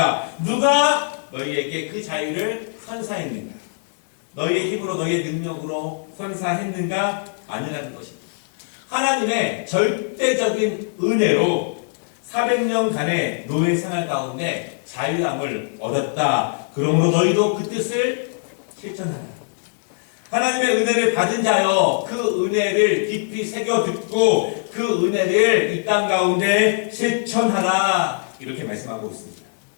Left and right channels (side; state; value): right; silent; digital silence